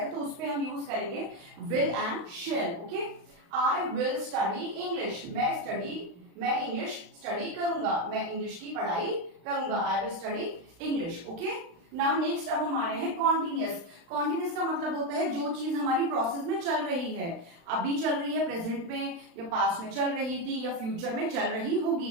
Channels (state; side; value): late; left; 35 ms